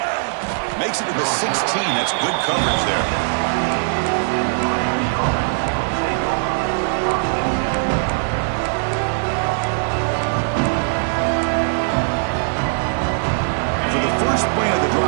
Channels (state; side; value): silent; left; 66 dB below the other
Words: Makes it to the 16. That's good coverage there. For the first play of the